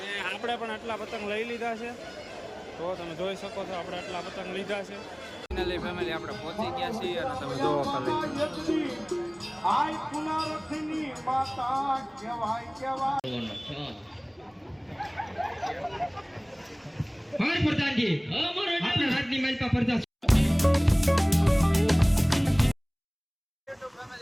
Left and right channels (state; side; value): identical; both; correlation 1.00